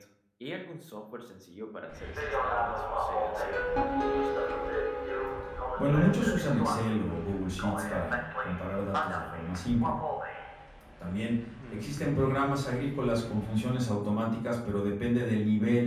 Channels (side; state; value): both; identical; correlation 1.00